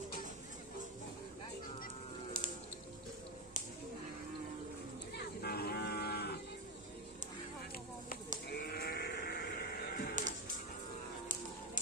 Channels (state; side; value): normal; both; correlation 0.12